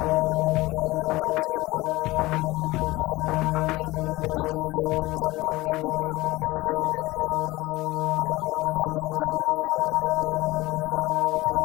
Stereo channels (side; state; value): right; quieter; 19.8 dB